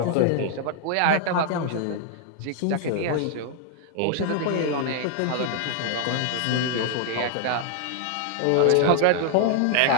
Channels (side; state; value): both; different; correlation 0.00